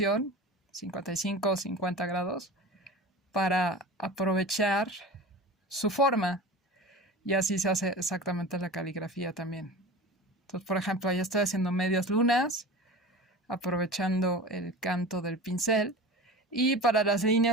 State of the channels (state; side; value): normal; both; correlation 0.33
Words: 55 o 50 grados, para aprovechar su forma. Y así se hace exactamente la caligrafía también. Entonces, por ejemplo, ahí estoy haciendo medias lunas, aprovechando el canto del pincel. Y para las